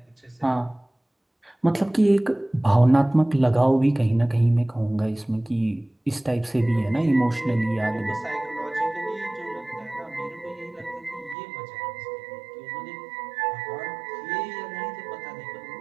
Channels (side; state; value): left; drops out; at 11.4 s